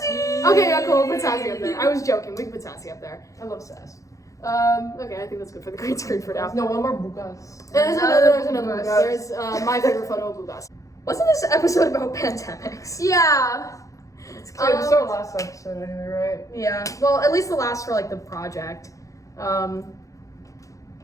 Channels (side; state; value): right; late; 0.16 ms